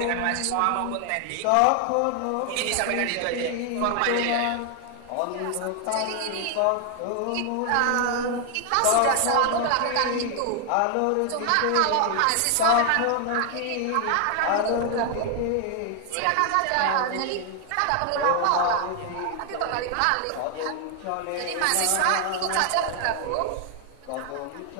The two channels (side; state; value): both; different; correlation 0.00